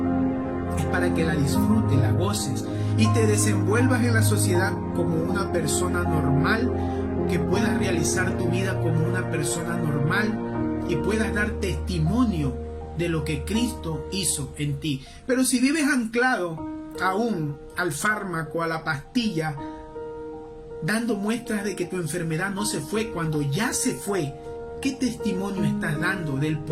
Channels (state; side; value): identical; both; correlation 1.00